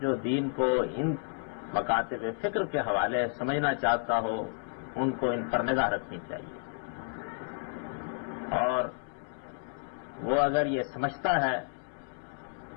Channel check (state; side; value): silent; right; 57 dB below the other